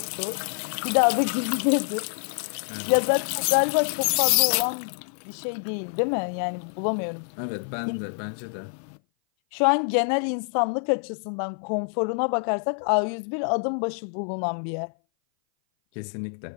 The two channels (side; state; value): right; silent; 57 dB below the other